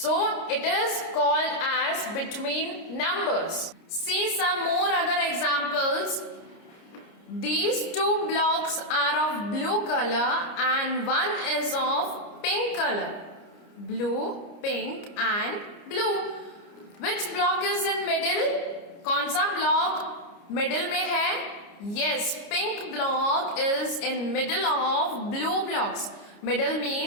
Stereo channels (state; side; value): late; right; 29 ms